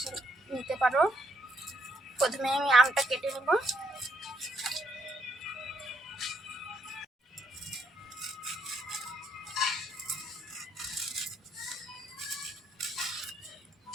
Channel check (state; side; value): normal; both; correlation 0.74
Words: নিতে পারো। প্রথমে আমি আমটা কেটে নেব।